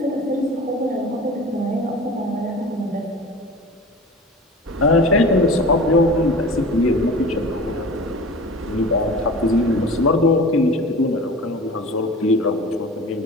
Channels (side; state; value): both; normal; correlation 0.37